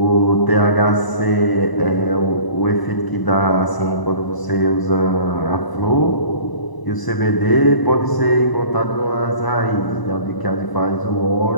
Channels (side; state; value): right; late; 1.0 ms